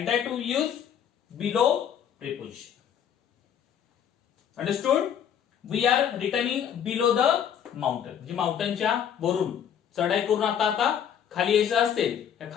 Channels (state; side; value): quieter; right; 8.8 dB